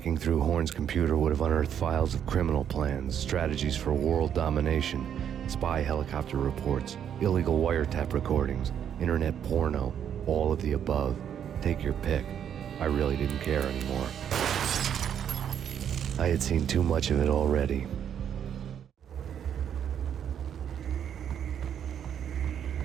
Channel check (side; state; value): left; quieter; 9.0 dB